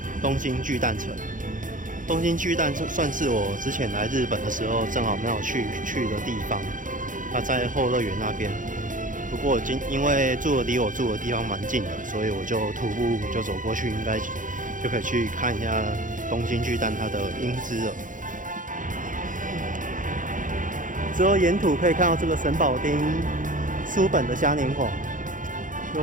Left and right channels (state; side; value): late; left; 0.38 ms